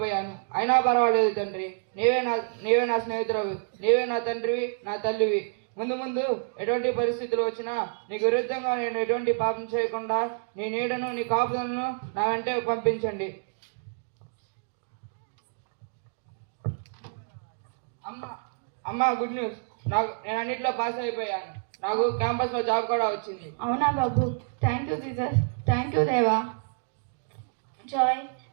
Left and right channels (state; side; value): silent; left; digital silence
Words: అయినా పర్వాలేదు తండ్రి, నీవే నా స్నేహితుడవి, నీవే నా తండ్రివి, నా తల్లివి. ముందు ముందు ఎటువంటి పరిస్థితులు వచ్చినా నీకు విరుద్ధంగా నేను ఎటువంటి పాపం చేయకుండా నీ నీడను, నీ కాపుదలను నా వెంటే పంపించండి. అమ్మ గుడ్ న్యూస్, నేను అన్నింటిలో పాస్ అయిపోయాను. నాకు క్యాంపస్లో జాబ్ కూడా వచ్చింది. అవునా బాబు, thank you Jesus, thank you దేవా. జాయ్,